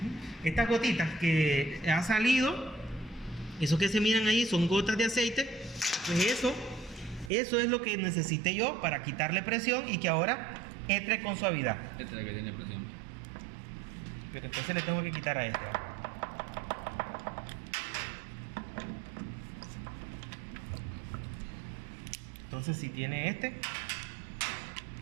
Estas gotitas que ha salido, eso que se miran ahí son gotas de aceite. Pues eso es lo que necesité yo para quitarle presión y que ahora entre con suavidad. Esta es la que tiene presión. Pero entonces le tengo que quitar a esta. Entonces si tiene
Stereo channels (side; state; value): left; drops out; at 7.3 s